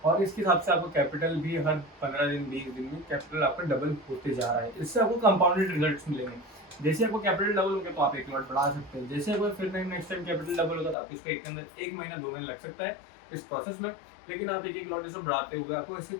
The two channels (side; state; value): right; drops out; at 11.0 s